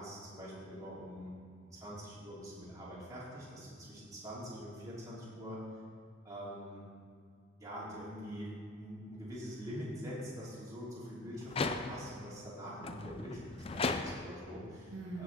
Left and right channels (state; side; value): normal; both; correlation 0.42